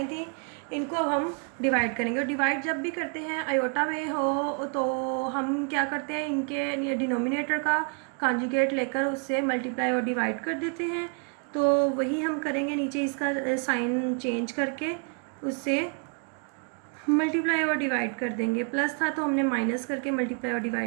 थी, इनको अब हम डिवाइड करेंगे। और डिवाइड जब भी करते हैं अयोटा में हो तो हम क्या करते हैं, इनके डिनोमिनेटर का कांजुगेट लेकर उससे मल्टीप्लाई और डिवाइड कर देते हैं। तो वही हम करेंगे, नीचे इसका साइन चेंज करके उससे मल्टीप्लाई और डिवाइड कर देंगे। प्लस था तो हमने माइनस करके मल्टीप्लाई और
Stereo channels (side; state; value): left; quieter; 37.6 dB